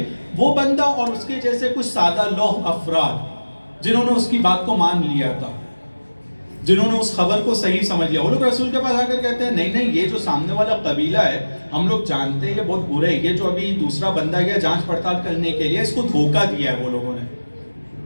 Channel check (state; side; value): inverted; both; correlation -1.00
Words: وہ بندہ اور اس کے جیسے کچھ سادہ لوح افراد جنہوں نے اس کی بات کو مان لیا تھا، جنہوں نے اس خبر کو صحیح سمجھ لیا، وہ لوگ رسول کے پاس آ کر کہتے ہیں نہیں نہیں، یہ جو سامنے والا قبیلہ ہے ہم لوگ جانتے ہیں یہ بہت برے ہے، یہ جو ابھی دوسرا بندہ گیا جانچ پڑتال کرنے کے لیے، اس کو دھوکہ دیا ہے وہ لوگوں نے،